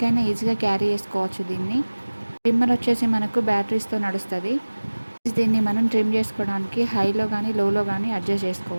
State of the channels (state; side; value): inverted; both; correlation -1.00